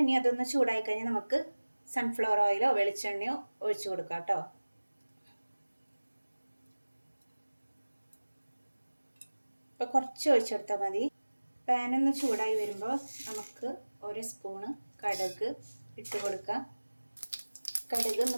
ഇനി അതൊന്ന് ചൂടായി കഴിഞ്ഞാൽ നമുക്ക് സൺഫ്ലവർ ഓയിലോ വെളിച്ചെണ്ണയോ ഒഴിച്ചു കൊടുക്കാം കേട്ടോ. ഇപ്പോൾ കുറച്ച് ഒഴിച്ചെടുത്താൽ മതി. പാനൊന്ന് ചൂടായി വരുമ്പോൾ നമുക്ക് 1 സ്പൂണ് കടുക് ഇട്ട് കൊടുക്കാം. കടുക്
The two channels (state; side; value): inverted; both; correlation -1.00